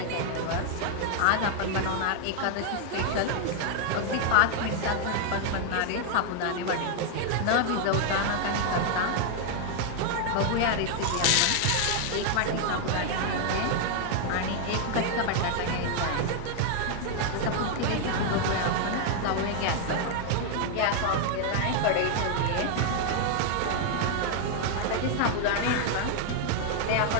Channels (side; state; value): both; different; correlation 0.00